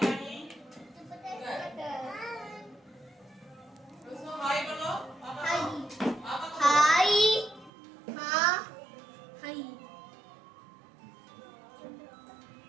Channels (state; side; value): drops out; left; at 7.7 s